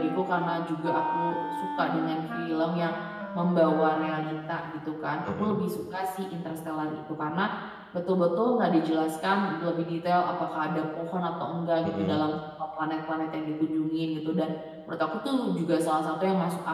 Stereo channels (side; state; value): both; identical; correlation 1.00